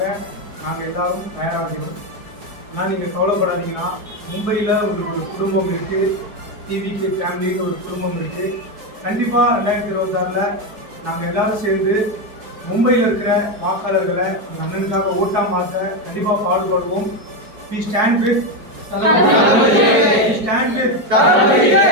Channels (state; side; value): late; left; 4.8 ms